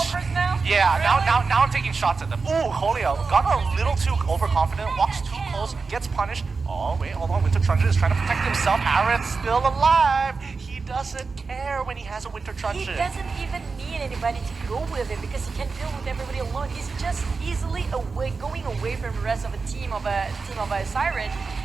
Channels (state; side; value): quieter; left; 4.5 dB